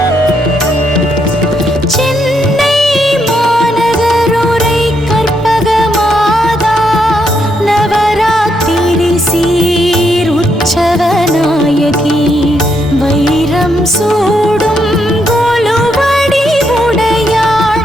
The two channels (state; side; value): normal; both; correlation 0.77